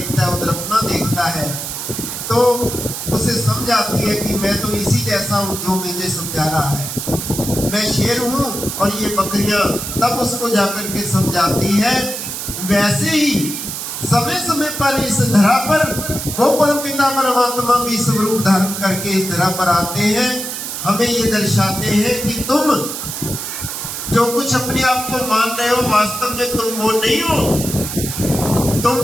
है, उधर अपना देखता है, तो उसे समझ आती है कि मैं तो इसी जैसा हूं जो मुझे समझा रहा है, मैं शेर हूं और ये बकरियां। तब उसको जाकर के समझाती है। वैसे ही समय समय पर इस धरा पर वो परमपिता परमात्मा भी स्वरूप धारण करके इस धरा पर आते हैं, हमें ये दर्शाते हैं कि तुम जो कुछ अपने आप को मान रहे हो, वास्तव में तुम वो नहीं हो। तुम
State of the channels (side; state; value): right; noise; hiss, 6 dB below the sound